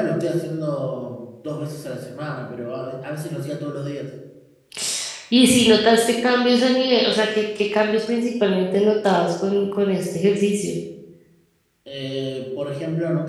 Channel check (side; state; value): both; identical; correlation 1.00